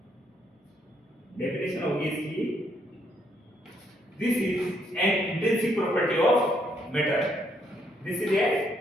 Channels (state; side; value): normal; both; correlation 0.73